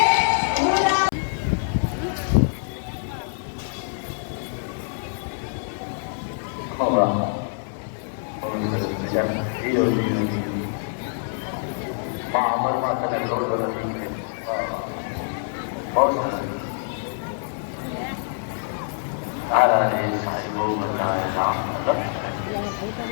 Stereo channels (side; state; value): right; silent; 62 dB below the other